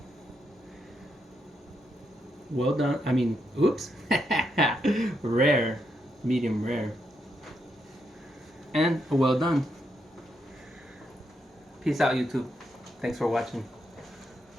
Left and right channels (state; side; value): normal; both; correlation 0.80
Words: Well done. I mean, oops. Rare. Medium rare. And well done. Peace out, YouTube. Thanks for watching.